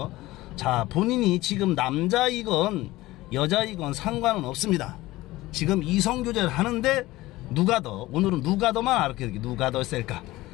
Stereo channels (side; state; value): right; quieter; 18.2 dB